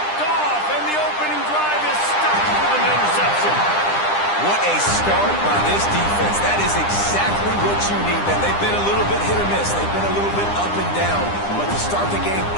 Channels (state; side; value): late; right; 9.9 ms